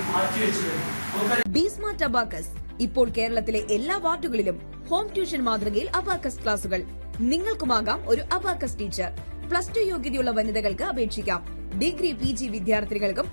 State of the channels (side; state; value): both; inverted; correlation -1.00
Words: മാറ്റിവെച്ചു കഴിഞ്ഞു. ബി-സ്മാർട്ട് അബാക്കസ് ഇപ്പോൾ കേരളത്തിലെ എല്ലാ വാർഡുകളിലും ഹോം ട്യൂഷൻ മാതൃകയിൽ അബാക്കസ് ക്ലാസുകൾ. നിങ്ങൾക്കുമാകാം ഒരു അബാക്കസ് ടീച്ചർ. +2 യോഗ്യതയുള്ള വനിതകൾക്ക് അപേക്ഷിക്കാം. ഡിഗ്രി PG വിദ്യാർത്ഥികൾക്കും